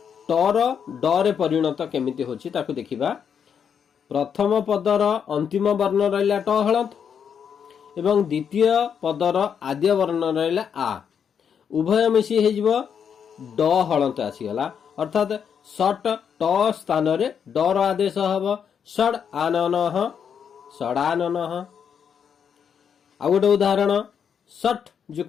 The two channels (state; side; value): quieter; right; 7.5 dB